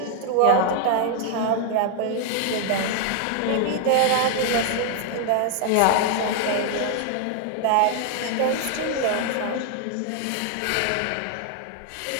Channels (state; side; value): different; both; correlation 0.00